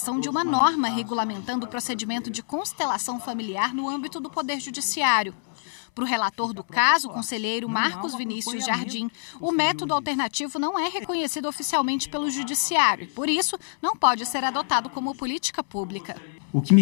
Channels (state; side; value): silent; right; 59 dB below the other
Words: de uma norma regulamentando o procedimento de constelação familiar no âmbito do Poder Judiciário. Para o relator do caso, o conselheiro Marcos Vinícius Jardim, o método alternativo não é reconhecido oficialmente pelo Judiciário e, por isso, não pode ser adotado como política pública. O que me